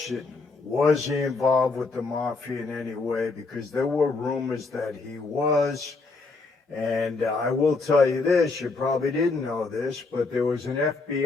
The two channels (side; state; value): right; quieter; 3.8 dB